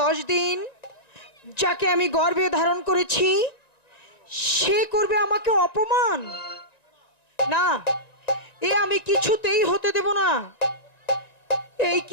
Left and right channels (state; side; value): late; right; 1.9 ms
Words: দিন যাকে আমি গর্ভে ধারণ করেছি সে করবে আমাকে অপমান? না, এ আমি কিছুতেই হতে দেব না।